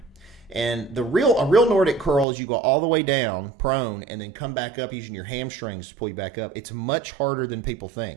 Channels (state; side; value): drops out; left; at 2.2 s